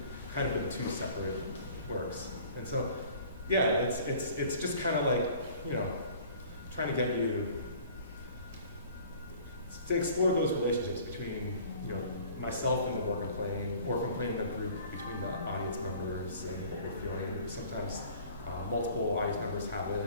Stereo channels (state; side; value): inverted; both; correlation -0.50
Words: kind of in two separate works. And so, yeah, it's just kind of like, trying to get you to explore those relationships between, myself and the work I'm playing, or if I'm playing in a group, between the audience members and what we're feeling. Sometimes multiple audience members have